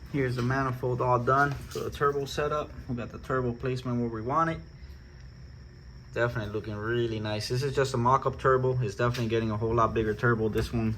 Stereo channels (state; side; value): identical; both; correlation 1.00